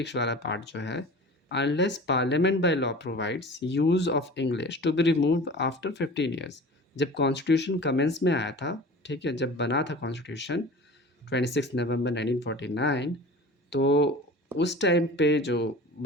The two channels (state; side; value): normal; both; correlation 0.39